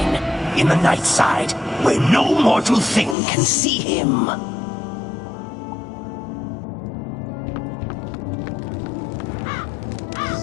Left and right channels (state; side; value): drops out; right; at 3.2 s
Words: In the night side, where no mortal thing can see him.